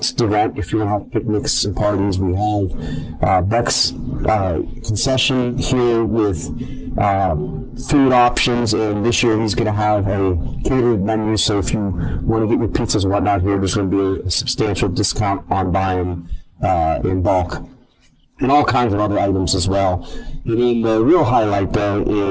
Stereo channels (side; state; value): both; identical; correlation 1.00